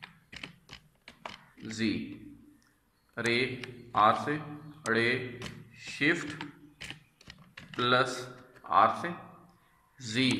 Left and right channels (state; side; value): identical; both; correlation 1.00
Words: जी, रे आर से, रे शिफ्ट प्लस आर से,